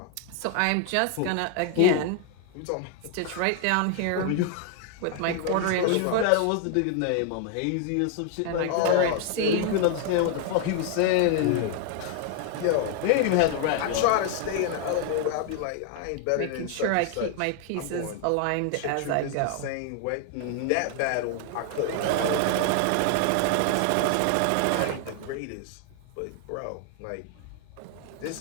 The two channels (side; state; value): both; different; correlation 0.00